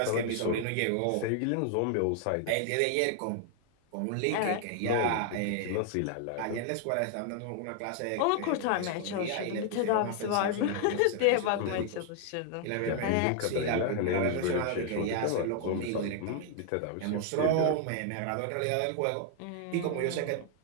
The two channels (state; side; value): different; both; correlation 0.00